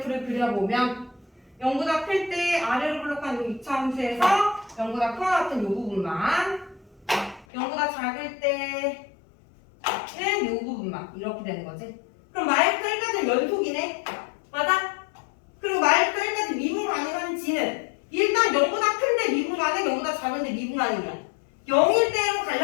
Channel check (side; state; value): right; drops out; at 7.5 s